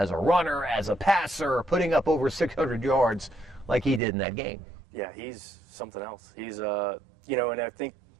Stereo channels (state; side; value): drops out; left; at 4.0 s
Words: a runner, as a passer, putting up over 600 yards like he did in that game. Yeah, he's something else. He's, and I think